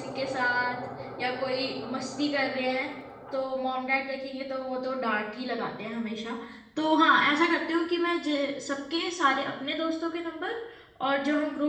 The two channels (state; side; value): identical; both; correlation 1.00